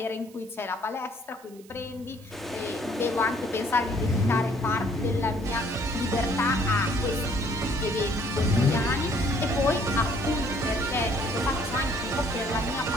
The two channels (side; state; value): right; noise; hiss, 25 dB below the sound